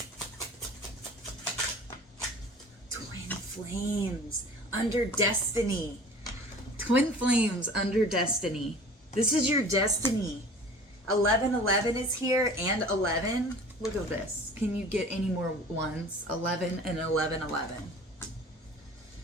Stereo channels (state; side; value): normal; both; correlation 0.43